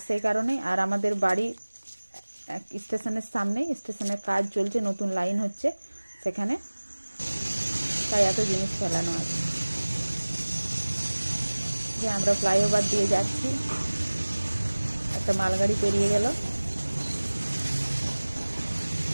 সেই কারণেই, আর আমাদের বাড়ি স্টেশনের সামনেই, স্টেশনের কাজ চলছে, নতুন লাইন হচ্ছে সেখানে, তাই এত জিনিস ফেলানো আছে। যে আমরা ফ্লাইওভার দিয়ে যাচ্ছি, একটা মালগাড়ি পেরিয়ে গেল।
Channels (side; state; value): both; inverted; correlation -1.00